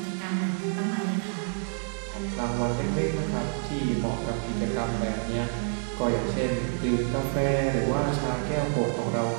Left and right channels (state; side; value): silent; left; 59 dB below the other